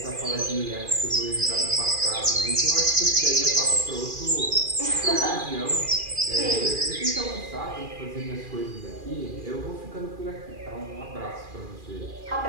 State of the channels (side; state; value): left; late; 2.4 ms